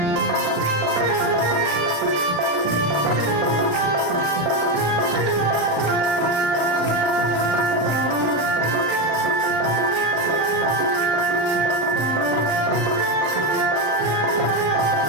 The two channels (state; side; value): late; left; 34 ms